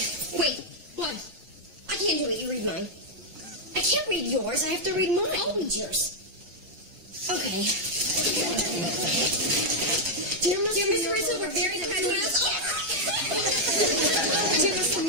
Wait, what? I can't do it. You read mine. I can't read yours. I have to read mine. I'll read yours. Okay. Dear Mr. Rizzo, we're very proud to announce... Dear Mr.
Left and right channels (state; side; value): late; left; 5.6 ms